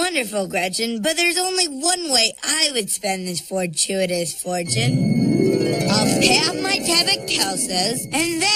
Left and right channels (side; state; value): both; identical; correlation 1.00